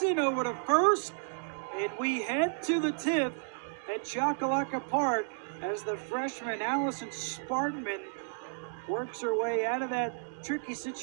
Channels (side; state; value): left; silent; digital silence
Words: over to first. And we head to the 10th at Chocolaca Park as the freshman Allison Spartman works her way out of that tricky